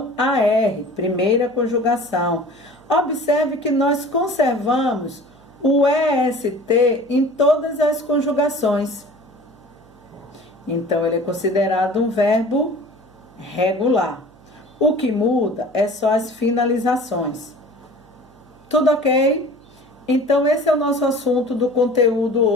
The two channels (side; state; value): right; noise; hum, 28 dB below the sound